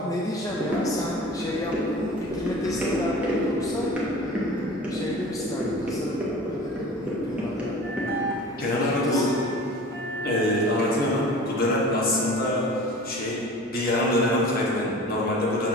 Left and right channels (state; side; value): normal; both; correlation 0.40